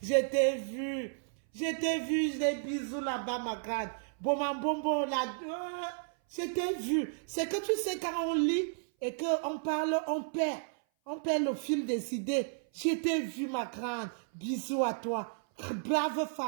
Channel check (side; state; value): left; silent; 56 dB below the other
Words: je t'ai vu, des bisous là-bas, ma grande, bonbon, là, je t'ai vu. C'est que tu sais, quand on lit et qu'on parle, on perd le fil des idées. Je t'ai vu, ma grande, bisous à toi, brave